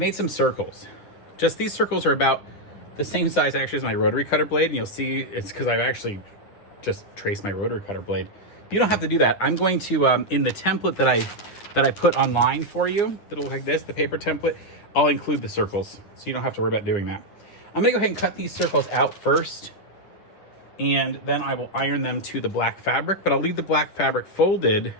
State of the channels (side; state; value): right; late; 9.9 ms